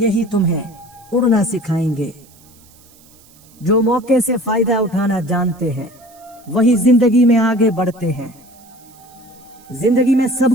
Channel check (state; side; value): noise; right; hiss, 27 dB below the sound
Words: तुम्हें उड़ना सिखाएंगे। जो मौके से फायदा उठाना जानते हैं वही जिंदगी में आगे बढ़ते हैं। जिंदगी में